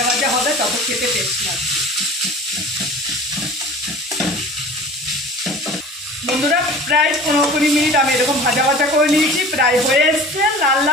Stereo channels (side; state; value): both; normal; correlation 0.41